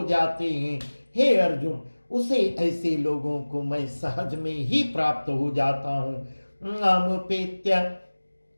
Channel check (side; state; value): both; inverted; correlation -1.00